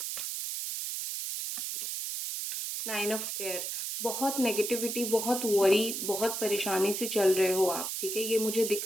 9 ऑफ एयर, बहुत नेगेटिविटी, बहुत वरी, बहुत परेशानी से चल रहे हो आप, ठीक है, ये मुझे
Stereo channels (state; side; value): noise; right; hiss, 3 dB below the sound